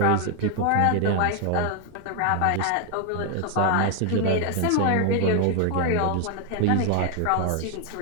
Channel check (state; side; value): different; both; correlation 0.01